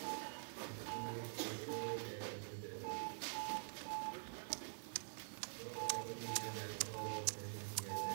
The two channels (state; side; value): silent; left; digital silence